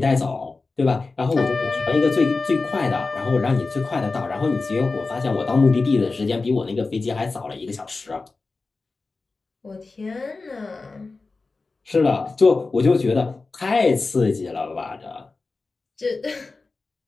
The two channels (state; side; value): quieter; right; 3.8 dB